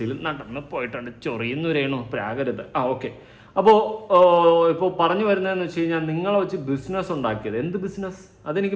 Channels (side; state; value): both; identical; correlation 1.00